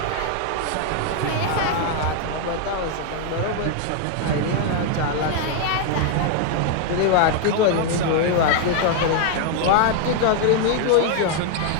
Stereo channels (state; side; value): different; both; correlation 0.00